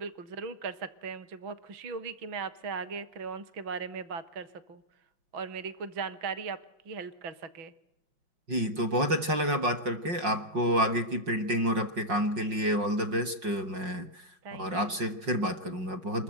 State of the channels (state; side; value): late; left; 5.5 ms